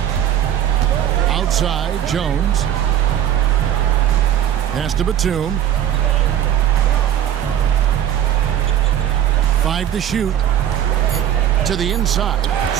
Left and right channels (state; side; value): quieter; left; 10.6 dB